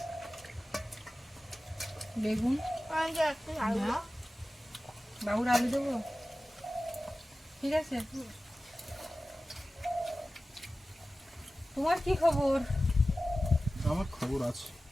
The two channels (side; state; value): both; normal; correlation 0.96